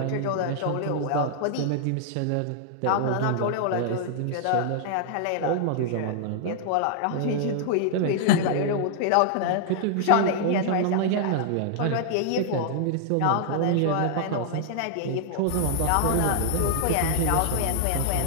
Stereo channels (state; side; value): different; both; correlation -0.01